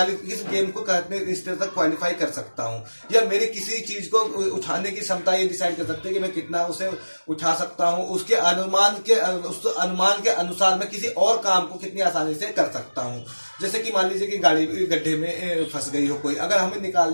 गेम को कितने स्तर तक क्वालिफाई कर सकता हूं। या मेरी किसी चीज को उठाने की क्षमता ये डिसाइड कर सकते हैं कि मैं कितना उसे उठा सकता हूं। उसके अनुमान के अनुसार मैं किसी और काम को कितनी आसानी से कर सकता हूं। जैसे कि मान लीजिए कि गाड़ी गड्ढे में फंस गई हो कोई, अगर हमें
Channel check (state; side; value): inverted; both; correlation -1.00